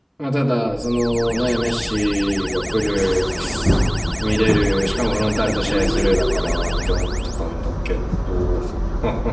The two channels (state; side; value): identical; both; correlation 1.00